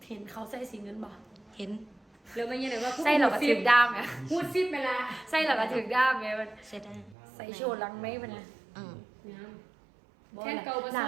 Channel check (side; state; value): left; drops out; at 7.2 s